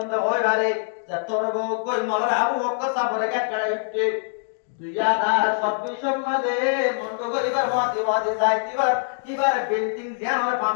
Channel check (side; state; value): right; silent; digital silence